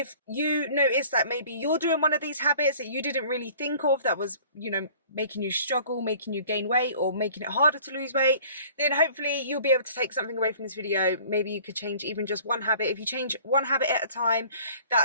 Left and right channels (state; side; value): inverted; both; correlation -0.50